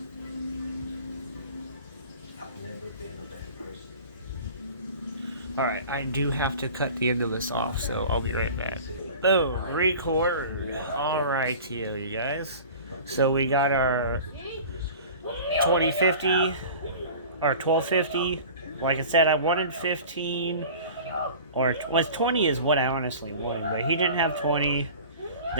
Alright, I do have to cut the end of this off, so I'll be right back. Boom, record. Alright, you guys. So we got our 2050 or 1250. Like I said, I wanted 15, or 20 is what I honestly wanted, but he didn't have 20.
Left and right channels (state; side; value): inverted; both; correlation -0.40